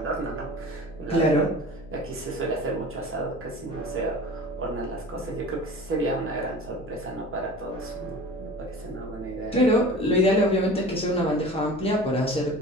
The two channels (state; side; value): noise; left; hum, 17 dB below the sound